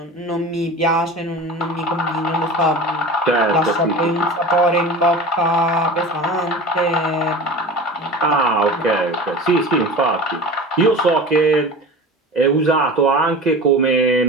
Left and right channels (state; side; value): normal; both; correlation 0.34